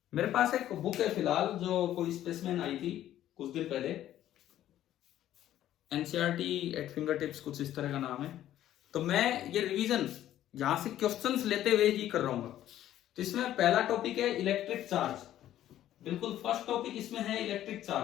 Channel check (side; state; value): right; quieter; 12.4 dB